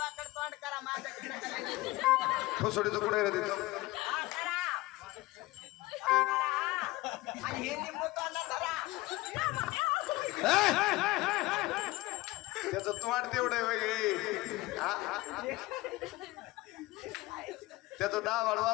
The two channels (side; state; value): right; quieter; 20.0 dB